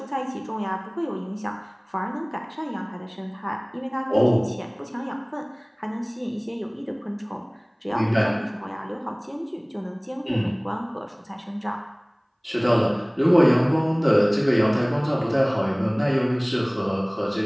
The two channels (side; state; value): both; identical; correlation 1.00